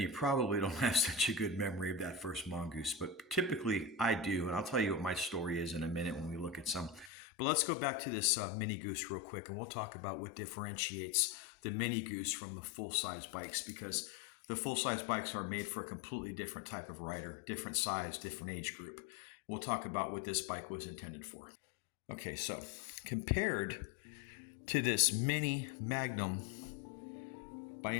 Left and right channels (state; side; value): drops out; right; at 7.1 s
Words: you probably don't have such a good memory of that first mongoose. But typically I do, and I'll tell you what my story is in a minute when we look at some. But let's go back to this MINIGOOSE real quick, and we'll talk about what differentiates the MINIGOOSE from the full-size bikes, because the full-size bikes are made for a completely different type of rider, different size, different age group. We'll talk about what this bike was intended for. Okay, so compared to this Mini Magnum by